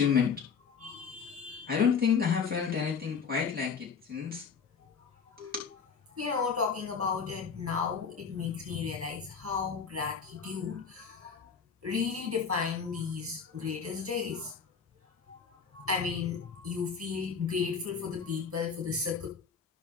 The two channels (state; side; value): quieter; right; 6.0 dB